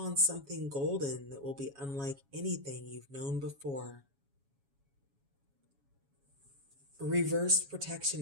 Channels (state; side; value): late; left; 7.2 ms